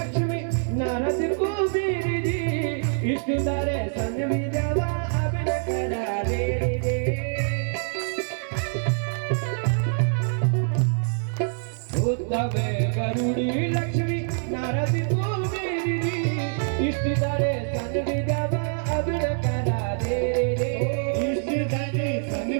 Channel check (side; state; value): left; silent; 62 dB below the other